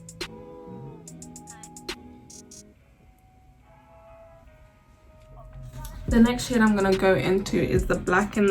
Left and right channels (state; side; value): identical; both; correlation 1.00